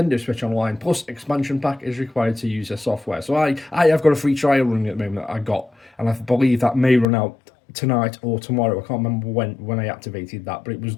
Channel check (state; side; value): drops out; right; at 7.1 s